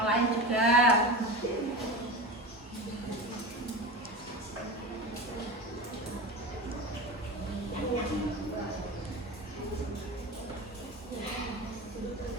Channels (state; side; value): normal; both; correlation 0.27